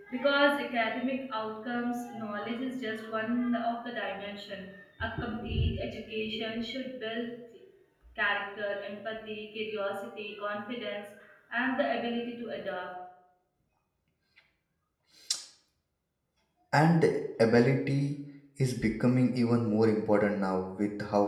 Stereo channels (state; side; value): identical; both; correlation 1.00